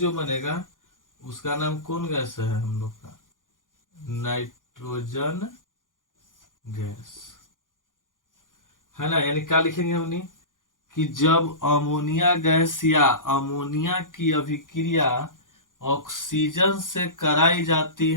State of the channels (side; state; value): right; late; 0.89 ms